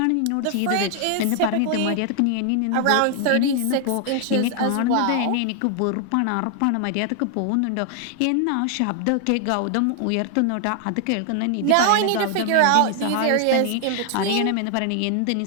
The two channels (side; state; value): both; different; correlation 0.00